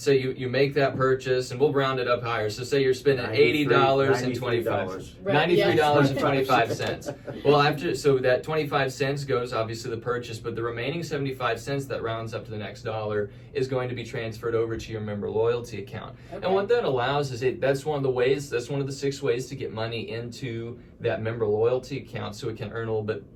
you make that purchase, and we'll round it up higher. So say you're spending $80.25. Right, yeah. $93.25. Well, so that 25 cents goes obviously the purchase, but the remaining 75 cents that rounds up to the next dollar is going to be transferred over to your member loyalty account. Okay. And what that allows is that's one of the 6 ways to get money into that member loyalty account so it can earn a little bit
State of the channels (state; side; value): identical; both; correlation 1.00